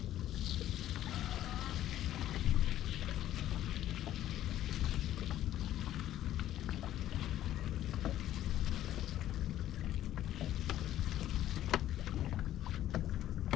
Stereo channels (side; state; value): right; quieter; 12.7 dB